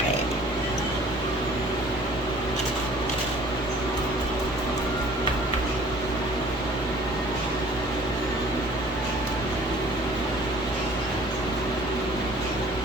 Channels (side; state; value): both; normal; correlation 0.51